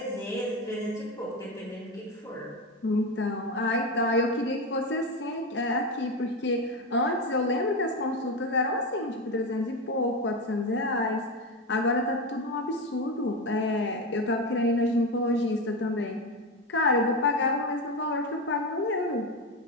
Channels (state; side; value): normal; both; correlation 0.16